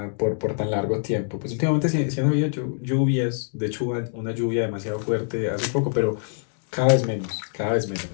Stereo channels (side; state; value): right; silent; 62 dB below the other